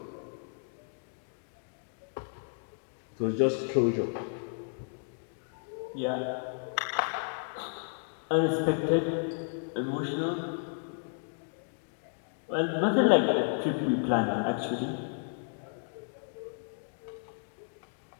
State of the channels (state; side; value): silent; right; digital silence